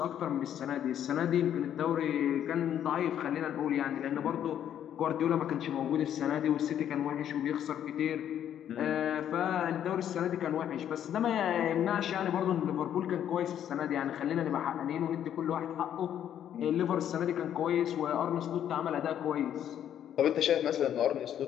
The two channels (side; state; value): right; quieter; 10.1 dB